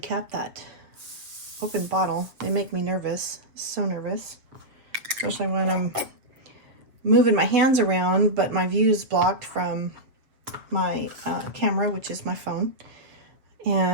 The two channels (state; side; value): late; left; 7.2 ms